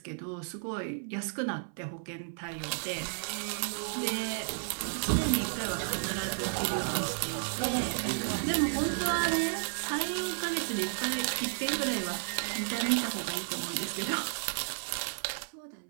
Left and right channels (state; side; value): silent; left; 56 dB below the other